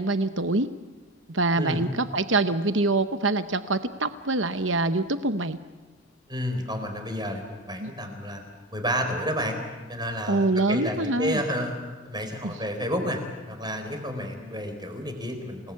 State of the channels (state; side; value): normal; both; correlation 0.26